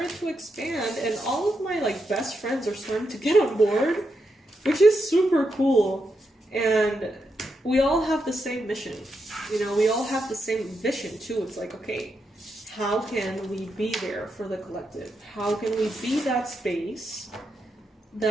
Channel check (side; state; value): both; normal; correlation 0.84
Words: to expand, and all of my, like, best friends are starting to get on board, which is super cool. And we all have the same mission. You know, we all have the same vision, too. It's like, okay, how can we be there for the collective? How can we be that space